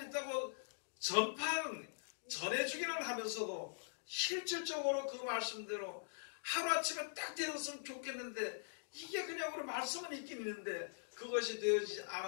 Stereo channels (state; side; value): silent; right; digital silence